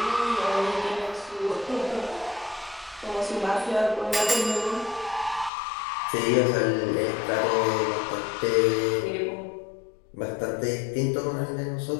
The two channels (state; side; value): drops out; right; at 5.5 s